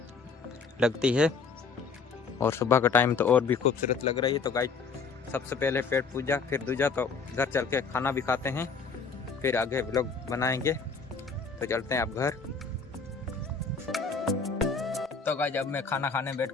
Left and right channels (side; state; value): right; quieter; 5.0 dB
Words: लगती है और सुबह का टाइम तो और भी खूबसूरत लग रही है। तो गाइज सबसे पहले पेट पूजा, फिर दूजा, तो घर चल के खाना भी खाते हैं, फिर आगे व्लॉग बनाएंगे। तो चलते हैं अब घर। तो गाइस अब मैं खाना खाने बैठ